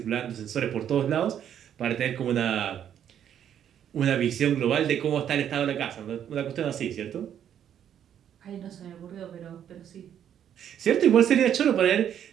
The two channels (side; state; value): left; quieter; 9.6 dB